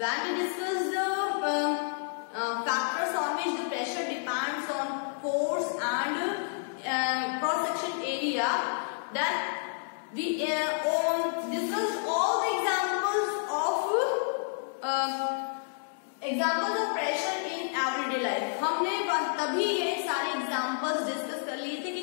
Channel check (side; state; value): right; silent; digital silence